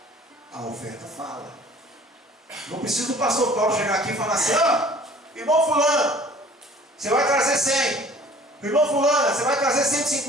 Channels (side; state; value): both; normal; correlation 0.50